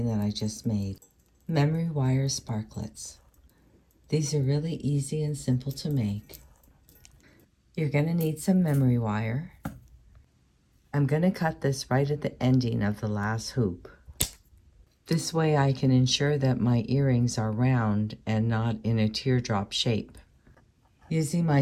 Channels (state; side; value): identical; both; correlation 1.00